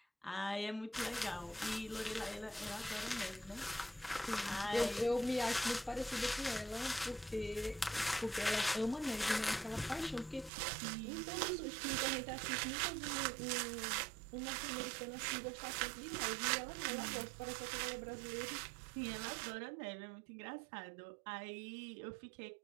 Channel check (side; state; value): left; drops out; at 10.5 s